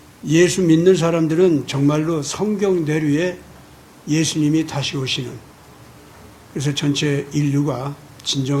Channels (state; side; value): identical; both; correlation 1.00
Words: 예수 믿는 사람들은 정말로 성경대로의 예수님이 다시 오시는, 그래서 전체 인류가